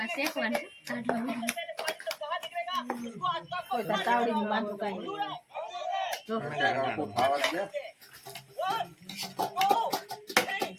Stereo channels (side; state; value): both; identical; correlation 1.00